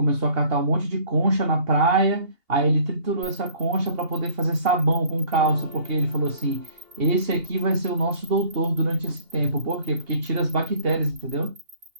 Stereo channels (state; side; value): late; left; 2.8 ms